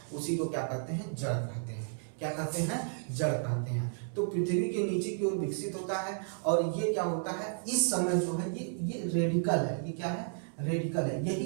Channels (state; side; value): silent; left; digital silence